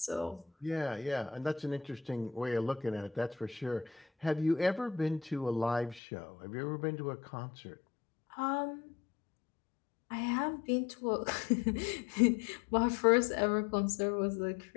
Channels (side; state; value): right; drops out; at 6.0 s